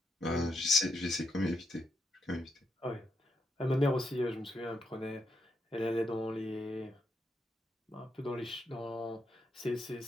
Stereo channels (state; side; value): normal; both; correlation 0.80